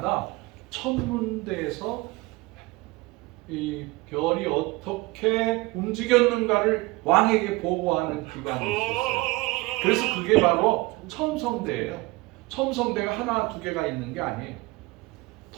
천문대에서 이 별이 어떻게 움직였는가를 왕에게 보고하는 기관이 있었어요. 그래서 그게 바로 첨성대예요. 첨성대가 하나 두 개가 있는 게 아니에요.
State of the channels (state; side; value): quieter; left; 22.9 dB